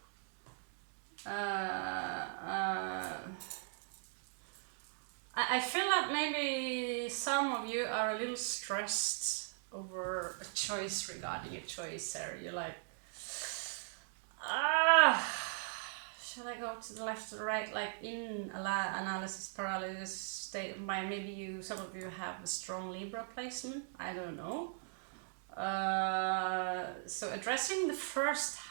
I feel like maybe some of you are a little stressed over a choice regarding a choice there. You're like, should I go to the left or the right? Like in analysis paralysis state of mind. Maybe some of you have a strong Libra placement. I don't know. So addressing the 1st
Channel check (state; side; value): silent; left; digital silence